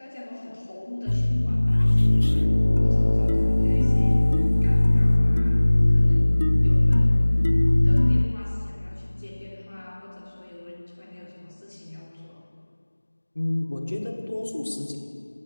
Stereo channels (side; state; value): both; inverted; correlation -1.00